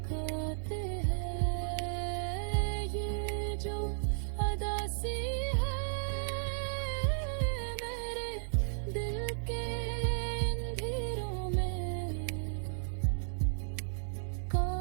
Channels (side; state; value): left; silent; digital silence